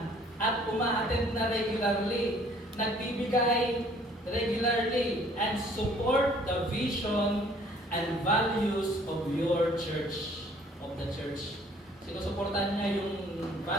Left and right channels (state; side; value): normal; both; correlation 0.57